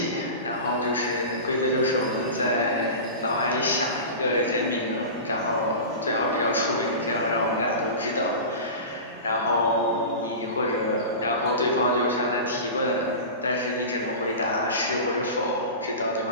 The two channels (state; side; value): inverted; both; correlation -0.30